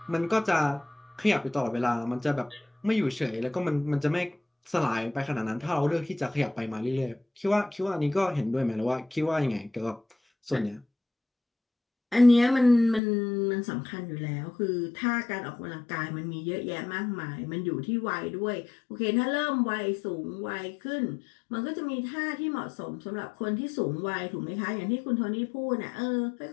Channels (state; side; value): drops out; right; at 13.0 s